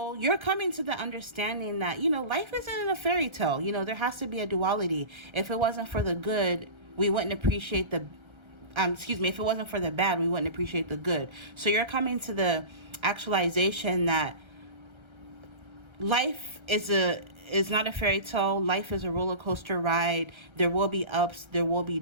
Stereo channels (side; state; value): left; late; 1.3 ms